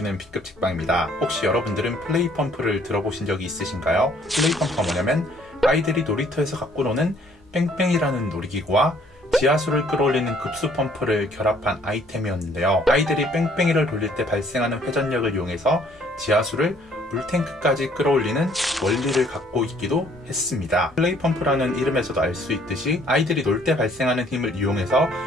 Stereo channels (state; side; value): normal; both; correlation 0.62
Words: B급 책방입니다. 혹시 여러분들은 플레이펌프를 들어보신 적이 있으신가요? 플레이펌프가 뭐냐면 아이들이 놀이터에서 갖고 노는 뺑뺑이라는 놀이기구와 지하수를 끌어올리는 급수펌프를 결합한 아이템이었는데요. 아이들이 뺑뺑이를 돌릴 때 발생하는 회전력을 이용해서 지하수를 물탱크까지 끌어올리는 원리를 갖고 있기도 했습니다. 플레이펌프라는 이름에서도 알 수 있듯이 아이들이 놀 때 발생하는 힘을 이용해서